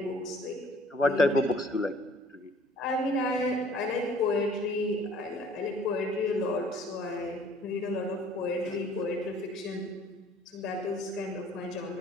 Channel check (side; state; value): both; normal; correlation 0.55